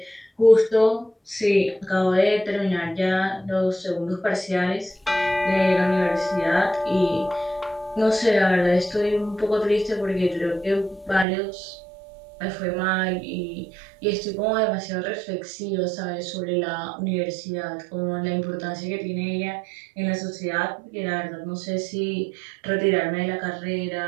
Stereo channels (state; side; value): drops out; left; at 11.2 s